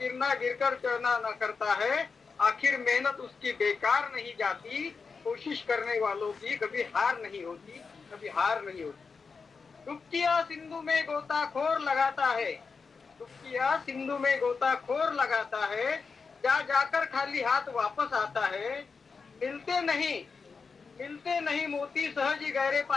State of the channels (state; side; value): quieter; right; 5.0 dB